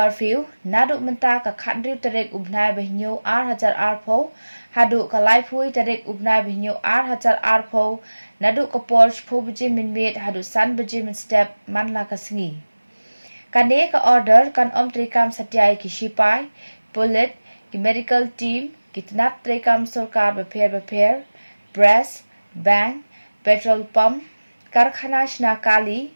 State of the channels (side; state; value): both; inverted; correlation -1.00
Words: naduk menta ka khandriu terek ubnai behnyo R1000 arpho haduk ka laiphui terek ubnai behnyo R1000 arpho naduk ka Porsche phobji min met haduk san beji min step manla ka singi kane ka order kan om trikam satyai ki sipai bullet ki medical team ki tnap trikam sarkar beper press bank petrol pump karkhana shna kali